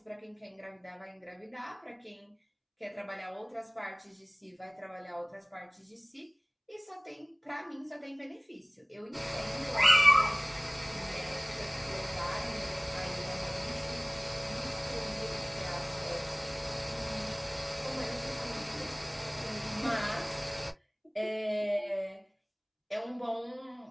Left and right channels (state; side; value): identical; both; correlation 1.00